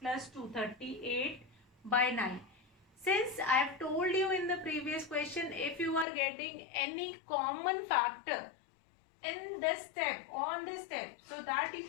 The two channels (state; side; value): drops out; right; at 6.1 s